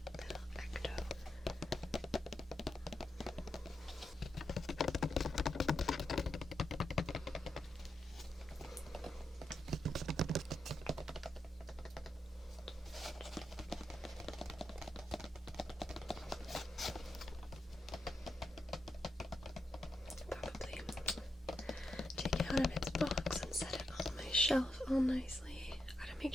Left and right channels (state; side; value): normal; both; correlation 0.84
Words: little Ecto. Probably take it out of its box and set it on my shelf all nicely. Gotta